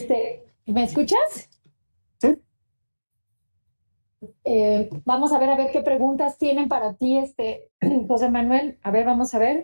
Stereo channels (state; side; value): inverted; both; correlation -1.00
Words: ¿Me escuchas? Sí. Vamos a ver qué preguntas tienen para ti, José Manuel. A ver, vamos a